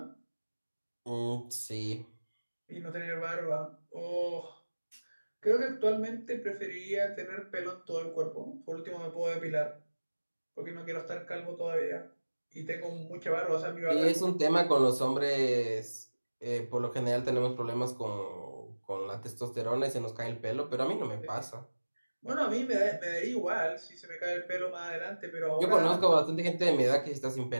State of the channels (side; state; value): both; inverted; correlation -1.00